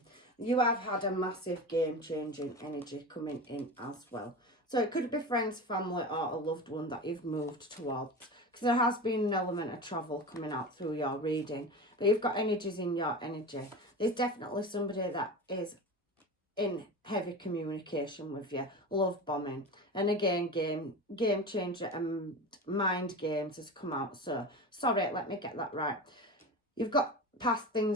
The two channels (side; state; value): both; normal; correlation 0.29